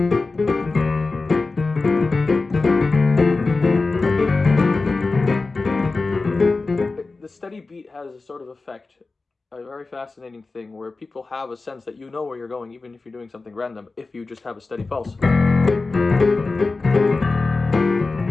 the steady beat has a sort of effect, a very fascinating thing where people have a sense that you know where you're going, even if you're doing something random, if you just have a steady pulse.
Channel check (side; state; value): right; quieter; 3.7 dB